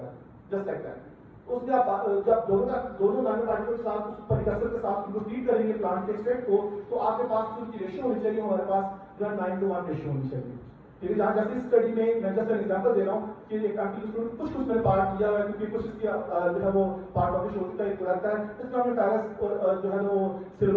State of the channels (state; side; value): identical; both; correlation 1.00